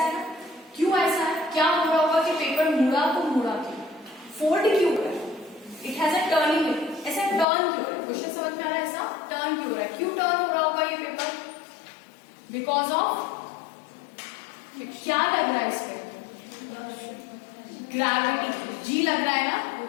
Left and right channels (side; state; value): right; drops out; at 7.5 s